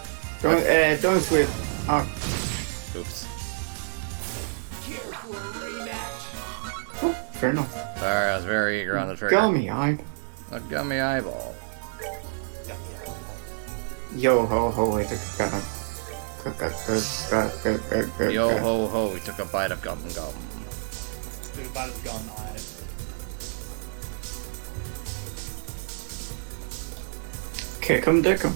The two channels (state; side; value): silent; left; 60 dB below the other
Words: Don't switch. Oh. Oops. Oh, fair enough. Sorry, I was very eager on the trigger. Gummy eye. A gummy eyeball. Yo ho ho, wait, Yo ho ho, we took a bite of gum gum. Dude, about his gun eye. Kick 'em, dick 'em.